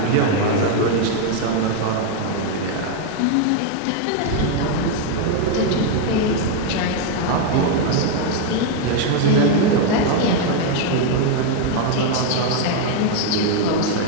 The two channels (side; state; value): both; different; correlation 0.01